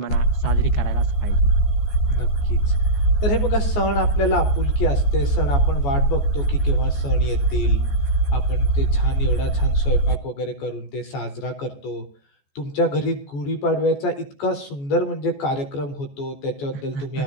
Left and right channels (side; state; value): right; late; 14 ms